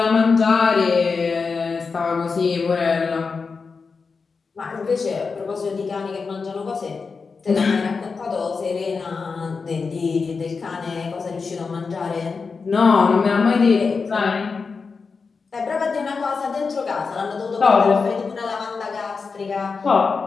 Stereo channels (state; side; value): quieter; right; 4.9 dB